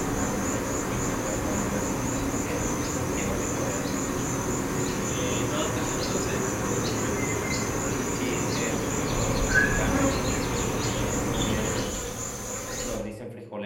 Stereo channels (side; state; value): both; identical; correlation 1.00